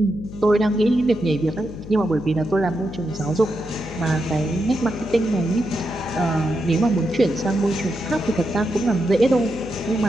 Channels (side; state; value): left; noise; hum, 13 dB below the sound